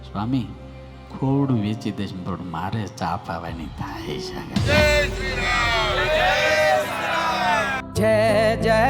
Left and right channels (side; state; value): both; identical; correlation 1.00